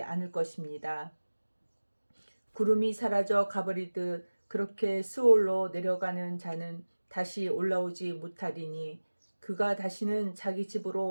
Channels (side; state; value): both; inverted; correlation -1.00